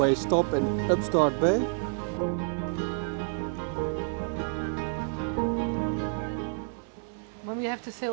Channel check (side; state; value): left; silent; 59 dB below the other